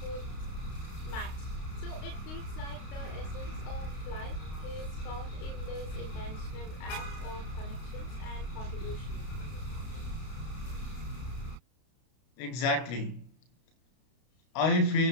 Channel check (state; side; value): late; right; 32 ms